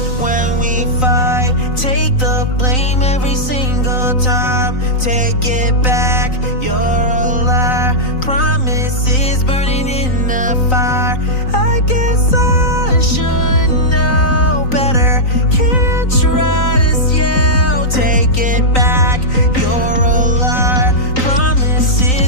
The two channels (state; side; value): late; right; 3.9 ms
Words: when we fight. Take the blame every single time. Take it back, you're a liar. Promises burning in the fire. I guess I should know better. Can't trust you. Take it back, you're a liar.